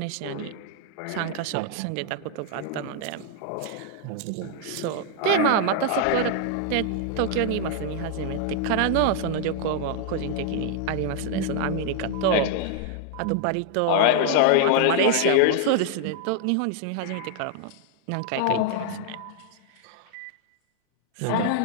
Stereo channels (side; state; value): both; different; correlation -0.01